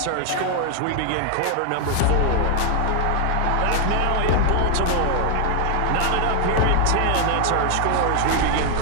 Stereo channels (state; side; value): different; both; correlation 0.00